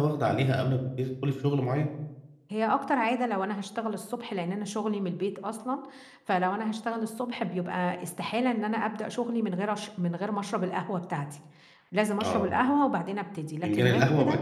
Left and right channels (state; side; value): identical; both; correlation 1.00